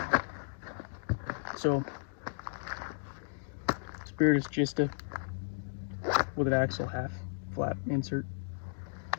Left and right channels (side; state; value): right; silent; digital silence